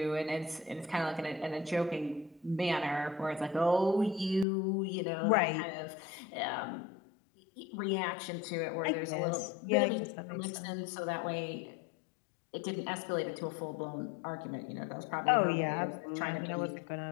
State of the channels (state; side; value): drops out; right; at 4.5 s